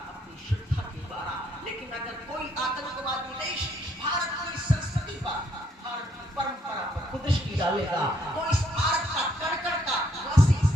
अपनी श्रद्धा के द्वारा। लेकिन अगर कोई आतंकवादी डालेगा तो इस भारत का कण-कण का वासी,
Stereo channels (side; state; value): both; normal; correlation 0.70